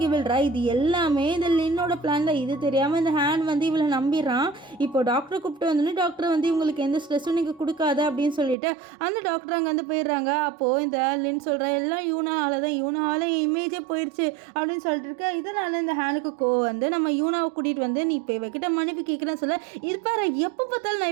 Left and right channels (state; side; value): drops out; left; at 8.6 s